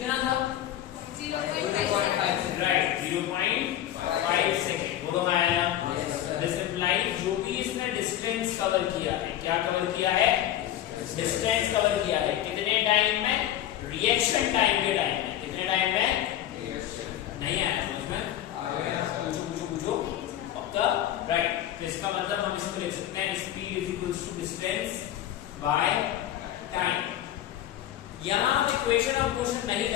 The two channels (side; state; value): right; quieter; 12.2 dB